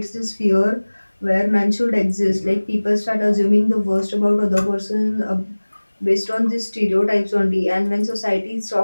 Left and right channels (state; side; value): inverted; both; correlation -1.00